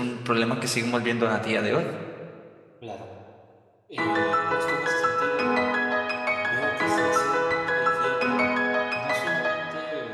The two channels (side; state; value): both; identical; correlation 1.00